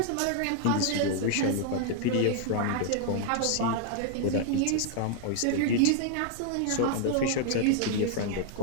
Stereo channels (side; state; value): both; different; correlation 0.00